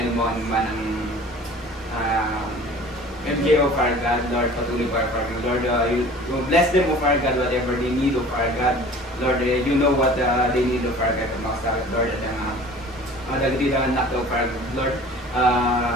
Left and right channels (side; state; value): right; noise; hum, 28 dB below the sound